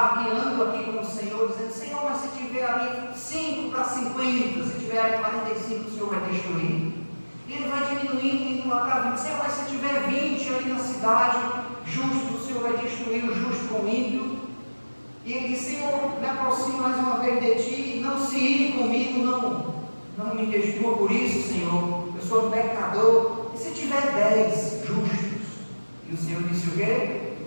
aqui com o Senhor, dizendo: Senhor, mas se tiver ali 5 para 50, se tiver ali 45, o Senhor vai destruir. E ele vai diminuindo, indo lá para 20. Senhor, mas se tiver 20 ali na cidade, justo, o Senhor vai destruir o justo com o ímpio. E ele diz: Senhor, me aproximo mais uma vez de ti, não se ire comigo, não me destrua por isso, Senhor, eu sou um pecador. E se tiver 10 justos? E o Senhor disse o quê?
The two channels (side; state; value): both; inverted; correlation -1.00